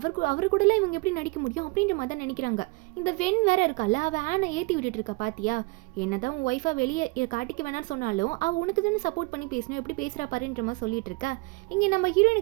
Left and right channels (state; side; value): quieter; left; 26.9 dB